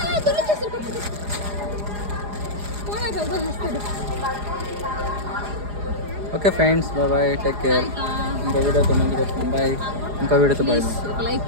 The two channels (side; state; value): left; late; 4.9 ms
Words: దొరికేస్తాడు, వస్తాడు. Okay friends, bye, take care. ఇంకో వీడియోతో ముందుకు వస్తాం. బాయ్. ఇంకో వీడియోతో బాయ్. లైక్